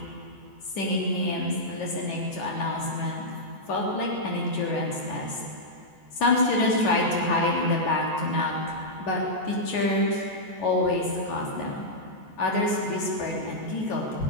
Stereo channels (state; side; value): late; left; 14 ms